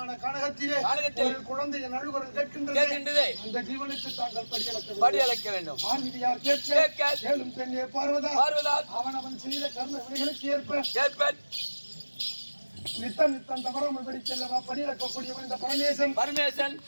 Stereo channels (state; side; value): inverted; both; correlation -1.00